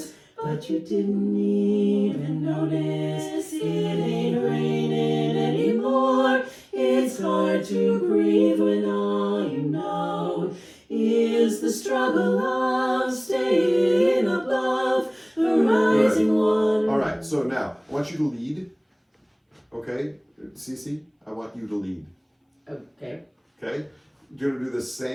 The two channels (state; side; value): identical; both; correlation 1.00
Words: but you didn't even notice it ain't raining anymore. It's hard to breathe when all you know is the struggle of staying above the rising water. All right. So now I want you to lead. Okay, Cece, I want you to lead. Okay. Okay, you're gonna do the